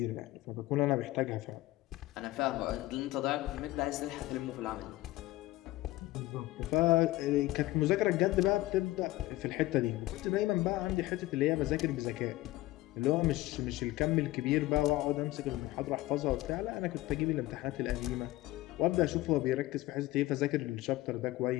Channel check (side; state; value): right; quieter; 17.4 dB